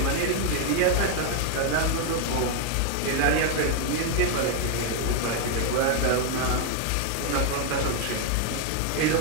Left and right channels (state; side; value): different; both; correlation 0.00